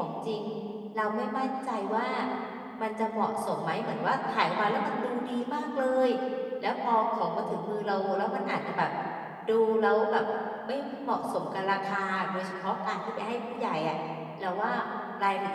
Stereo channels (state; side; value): identical; both; correlation 1.00